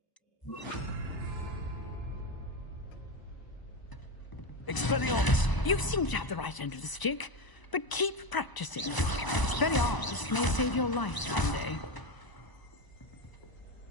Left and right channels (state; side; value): late; right; 1.0 ms